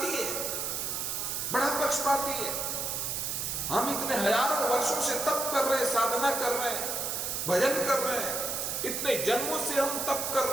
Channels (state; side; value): noise; right; hiss, 2 dB below the sound